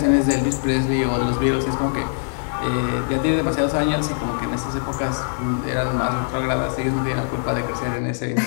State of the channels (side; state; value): right; silent; digital silence